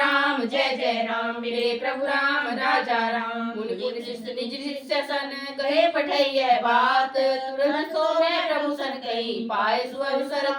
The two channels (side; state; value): both; identical; correlation 1.00